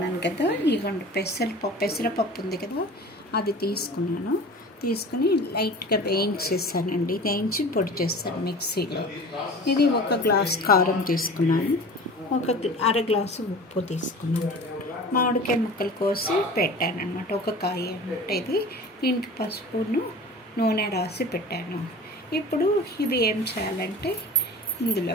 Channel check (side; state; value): both; normal; correlation 0.39